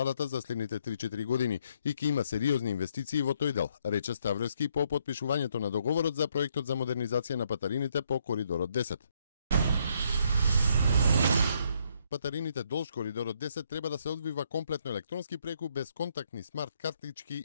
за следните 3-4 години и ќе има сериозни инвестиции во тој дел, рече Ставревски по потпишувањето на договорот за проектот за модернизација на патарините по коридорот 10. Патарините долж коридорот 10 треба да се одвива комплетно електронски преку безконтактни смарт картички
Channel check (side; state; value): both; inverted; correlation -0.72